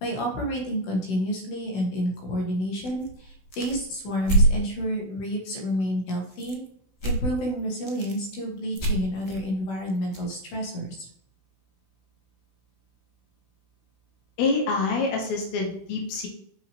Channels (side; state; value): right; late; 16 ms